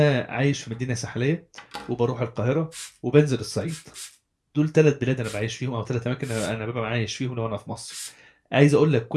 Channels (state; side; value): identical; both; correlation 1.00